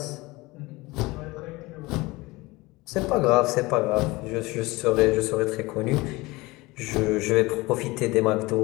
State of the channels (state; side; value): quieter; right; 21.9 dB